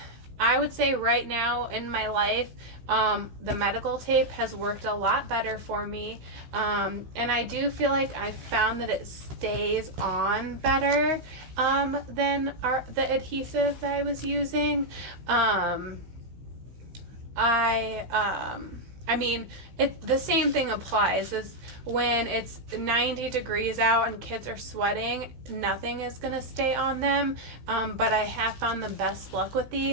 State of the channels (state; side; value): late; left; 16 ms